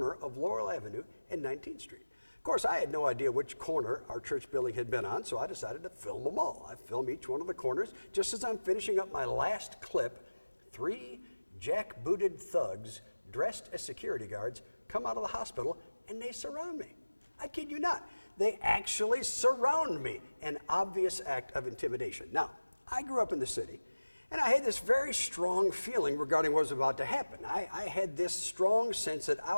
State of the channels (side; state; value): both; inverted; correlation -1.00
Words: of Laurel Avenue and 19th Street. Of course, I had no idea which corner our church building had been on, so I decided to film them all. I film each one of the corners. Just as I'm finishing up my last clip, 3 jackbooted thugs dressed as security guards come out of the hospital and they surround me. I kid you not. They actually surround me, an obvious act of intimidation. Now, I grew up in the city, and I had this very strong feeling regarding what was about to happen. I had this strong sense that I